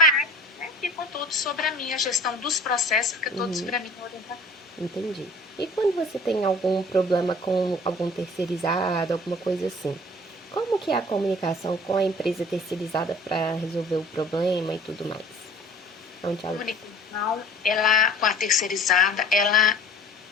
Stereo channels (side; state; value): both; normal; correlation 0.48